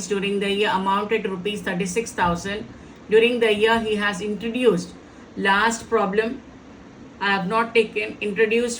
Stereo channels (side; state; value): both; identical; correlation 1.00